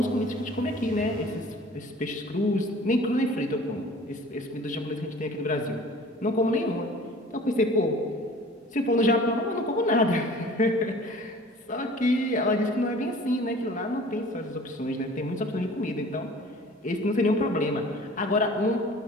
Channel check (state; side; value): normal; both; correlation 0.46